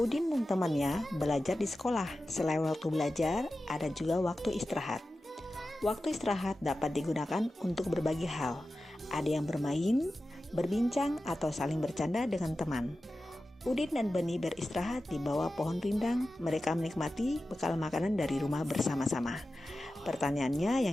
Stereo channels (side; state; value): both; normal; correlation 0.93